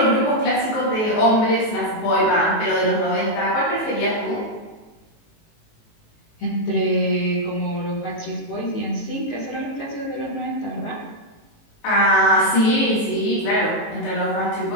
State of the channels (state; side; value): late; right; 18 ms